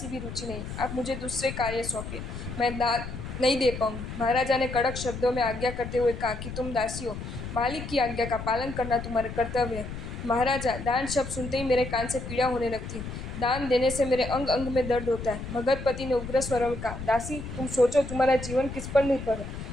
भी रुचि नहीं, आप मुझे दूसरे कार्य सौंपिए, मैं दान नहीं दे पाऊंगी। महाराजा ने कड़क शब्दों में आज्ञा करते हुए कहा कि तुम दासी हो, मालिक की आज्ञा का पालन करना तुम्हारा कर्तव्य है। महाराजा, दान शब्द सुनते ही मेरे कान से पीड़ा होने लगती है, दान देने से मेरे अंग अंग में दर्द होता है। मगधपति ने उग्र स्वर में कहा, दासी, तुम सोचो तुम्हारा जीवन किस पर निर्भर है।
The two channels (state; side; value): noise; left; rumble, 8 dB below the sound